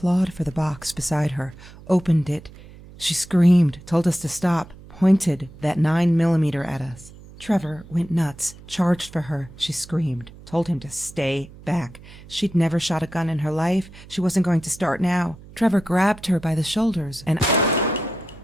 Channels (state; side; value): noise; right; hum, 19 dB below the sound